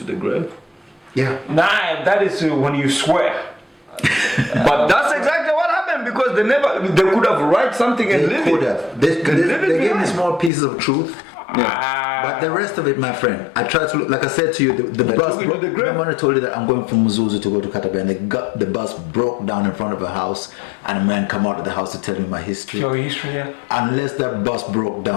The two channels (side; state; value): right; drops out; at 10.5 s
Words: the grave." Yeah. Nah, that is when you swear. But that's exactly what happened because they could have write something and They live could it. have. They live it gave me behind. small pieces of truth. Ah. But the rest of it, my friend, I tried to look, like I said to you, the bus. took you to the grave. Remember when I told you that I'm going from Muzuzu to go to Katabe, and the bus broke down in front of a house, and a man come out of the house to tell me my history. Your history, yeah. Unless that bus broke